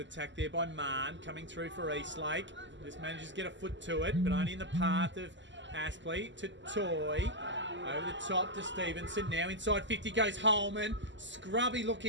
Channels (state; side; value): late; left; 0.54 ms